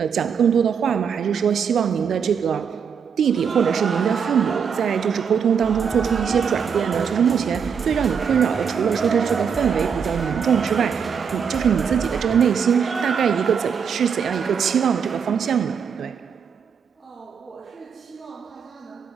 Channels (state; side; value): quieter; left; 6.8 dB